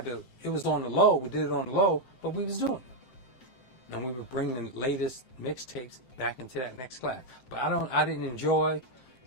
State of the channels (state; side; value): late; right; 7.7 ms